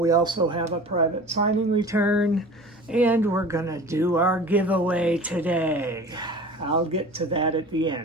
also have a private signing return, and we're gonna do our giveaway today. I'll get to that at the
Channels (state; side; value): normal; both; correlation 0.39